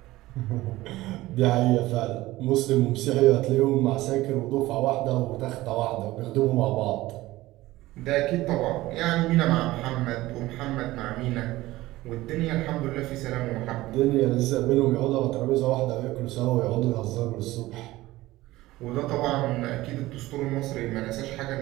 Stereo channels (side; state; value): left; quieter; 17.7 dB